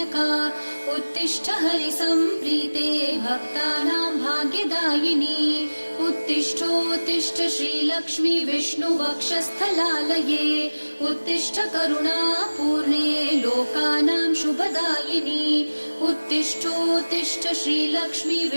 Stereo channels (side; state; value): both; inverted; correlation -1.00